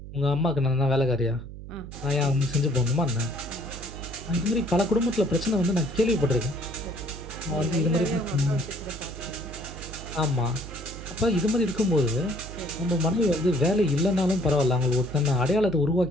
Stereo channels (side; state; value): right; noise; hum, 12 dB below the sound